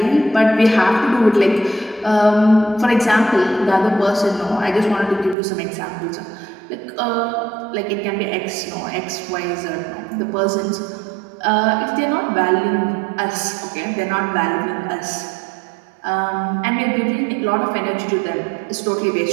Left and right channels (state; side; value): drops out; left; at 5.4 s